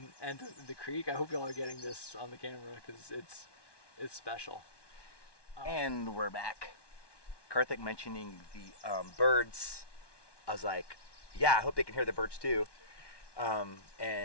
and the creek. I hope y'all are getting this on the camera because it's special. And we're back. Kartik mentioning the birds, I was like, yeah, I hope they can hear the birds too.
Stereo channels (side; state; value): right; late; 1.1 ms